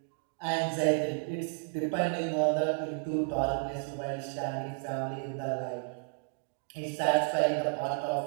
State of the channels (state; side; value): quieter; left; 38.0 dB